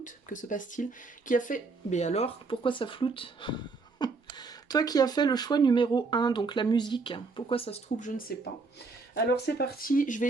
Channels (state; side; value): quieter; left; 4.1 dB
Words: que se passe-t-il? Qui a fait... Mais alors, pourquoi ça floute? Toi qui as fait le choix numéro 1, donc la musique, pourquoi ça se trouve, je ne sais pas. Alors c'est parti, je vais